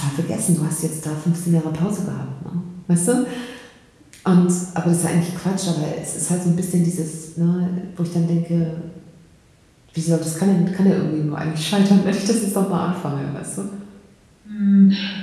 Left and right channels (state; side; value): identical; both; correlation 1.00